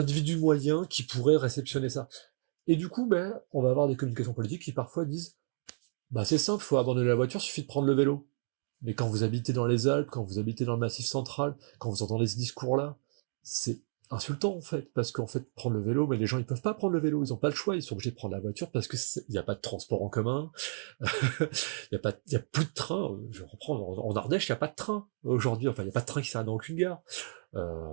moyen qui pourrait réceptionner ça. Et du coup, on va avoir des communications politiques qui parfois disent c'est simple, faut abandonner la voiture, suffit de prendre le vélo. Mais quand vous habitez dans les Alpes, quand vous habitez dans le Massif central, quand vous entendez ce discours-là, c'est insultant en fait, parce qu'en fait prendre le vélo, mais les gens ils peuvent pas prendre le vélo, ils ont pas le choix, ils sont obligés de prendre la voiture parce que il y a pas de transport en commun, il y a plus de train. Je reprends en Ardèche, il y a pas de train aujourd'hui, il y a pas de train qui s'arrête dans aucune gare.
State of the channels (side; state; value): left; silent; digital silence